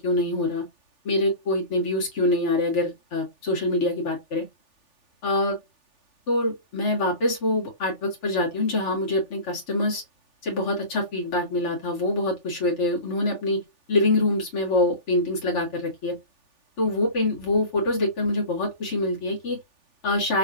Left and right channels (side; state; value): right; late; 3.4 ms